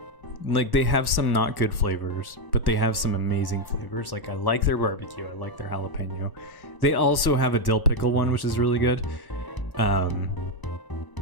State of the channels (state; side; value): late; right; 1.1 ms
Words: Like, they have some not good flavors, but they have some amazing flavors. Like, I like their barbecue, I like their jalapeno. They also have a dill pickle one, which is really good.